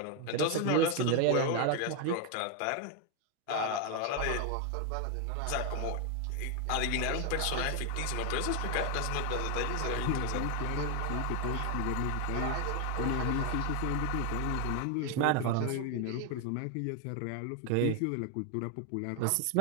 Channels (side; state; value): both; different; correlation 0.01